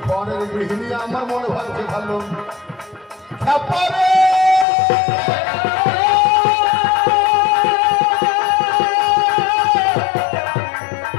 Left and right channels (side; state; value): right; drops out; at 4.7 s